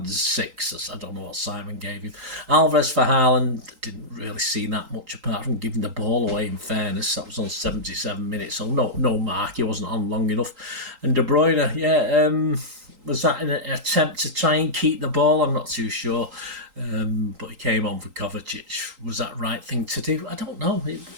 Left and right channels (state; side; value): late; left; 3.8 ms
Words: 6. I don't know what Simon gave him. Alvarez for Haaland, didn't really see that much apart from giving the ball away, in fairness. That was on 77 minutes, so no Marc, he wasn't on long enough. And De Bruyne, was that an attempt to try and keep the ball? I'm not too sure. But he came on for Kovacic. Was that the right thing to do? I don't know. It